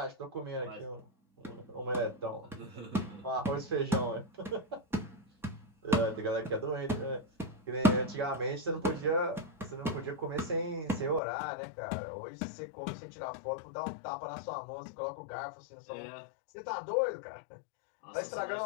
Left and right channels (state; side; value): drops out; right; at 11.2 s